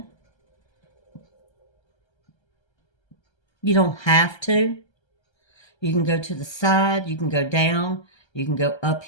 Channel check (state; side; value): late; right; 1.3 ms